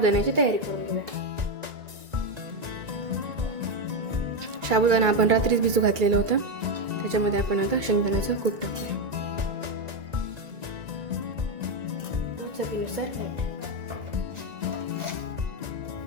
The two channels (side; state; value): left; late; 1.9 ms